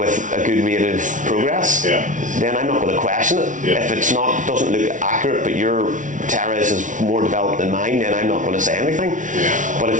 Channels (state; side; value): late; left; 0.37 ms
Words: a good rate of progress, then I'm not going to question it. If it's doesn't look accurate, but you're Tara's is more developed than mine, then I'm not going to say anything. Yeah. But